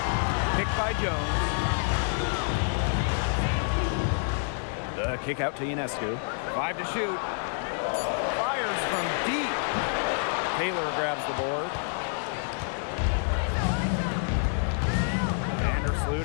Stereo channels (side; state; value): right; silent; 59 dB below the other